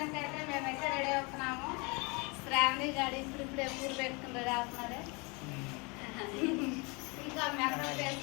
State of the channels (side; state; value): right; quieter; 29.2 dB